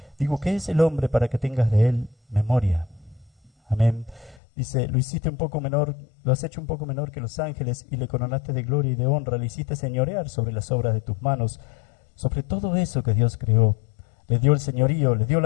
digo, ¿qué es el hombre para que tengas de él memoria? Amén. Dice, lo hiciste un poco menor, lo has hecho un poco menor que los ángeles, y le coronaste de gloria y de honra, le hiciste señorear sobre las obras de tus manos, sobre todo eso que Dios creó. Le dio el señorío, le dio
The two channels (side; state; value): right; drops out; at 4.4 s